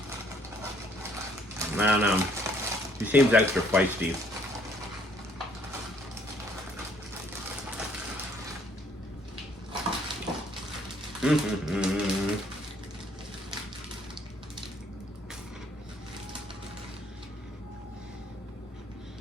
I don't know. He seems extra feisty.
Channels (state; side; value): normal; both; correlation 0.64